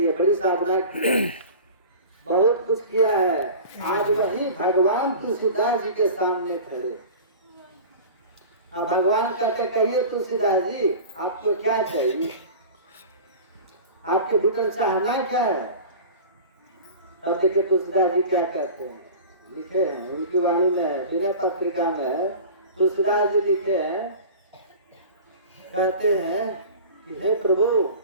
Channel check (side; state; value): both; inverted; correlation -0.37